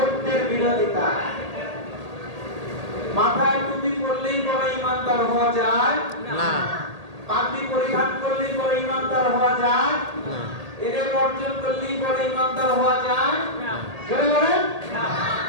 বিরোধিতা। মাথায় টুপি পরলেই বড় ইমানদার হওয়া যায় না, পাগড়ি পরিধান করলেই বড় ইমানদার হওয়া যায় না, এদের অর্জন করলেই বড় ইমানদার হওয়া যায় না। জোরে বলেন না।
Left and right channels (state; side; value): late; left; 1.8 ms